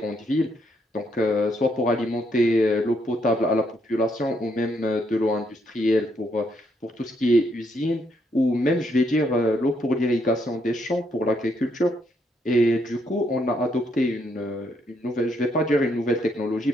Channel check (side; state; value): both; normal; correlation 0.74